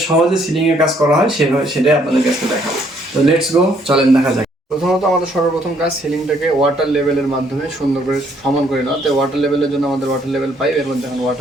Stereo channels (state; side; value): normal; both; correlation 0.67